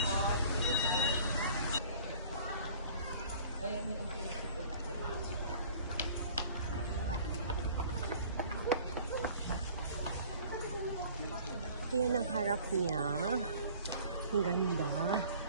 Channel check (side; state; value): both; inverted; correlation -0.49